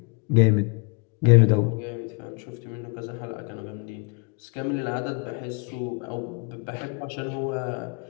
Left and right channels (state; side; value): quieter; right; 35.9 dB